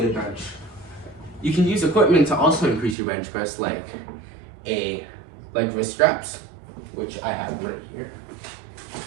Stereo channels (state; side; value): drops out; left; at 3.0 s